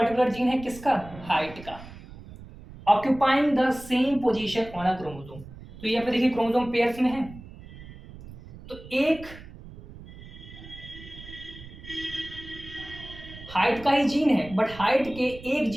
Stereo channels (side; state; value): right; noise; rumble, 16 dB below the sound